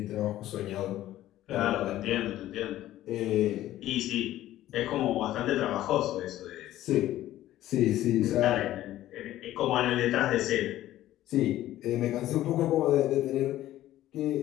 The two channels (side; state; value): right; quieter; 14.0 dB